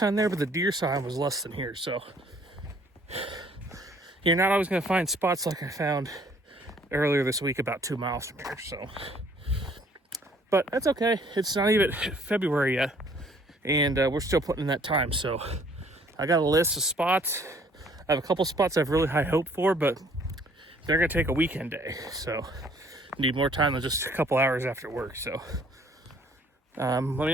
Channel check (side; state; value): both; normal; correlation 0.59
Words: there, but the deer sign was less than here. So you're not always going to find spots like I found earlier this week about 2 miles from here. So, but that's okay. It's not even February yet, and we're still putting in that time. So I got a list of spots. I have a couple spots I have really high hope for, but they're going to take a weekend day. So need more time than just a couple hours after work. So let me